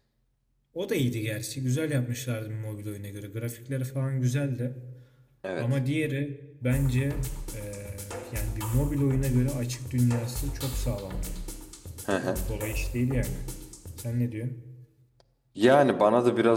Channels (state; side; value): identical; both; correlation 1.00